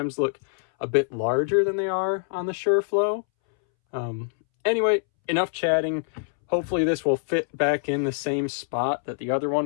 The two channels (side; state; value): right; silent; 62 dB below the other